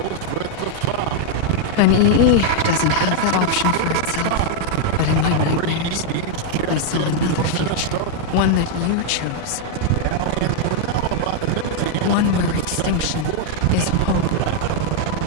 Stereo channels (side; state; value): both; different; correlation 0.00